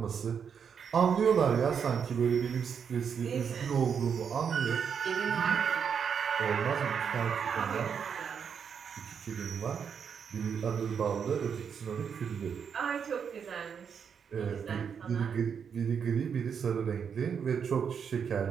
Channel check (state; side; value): quieter; left; 7.0 dB